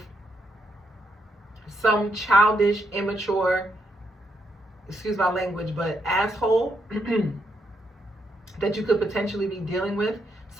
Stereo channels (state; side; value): normal; both; correlation 0.79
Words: some childish, immature, excuse my language, but asshole that you could potentially be dealing with.